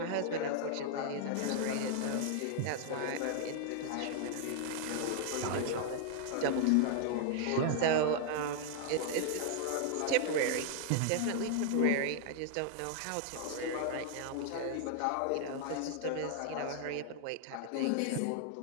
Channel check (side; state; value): both; different; correlation 0.00